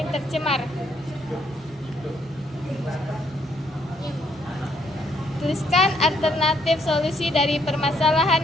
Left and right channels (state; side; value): normal; both; correlation 0.70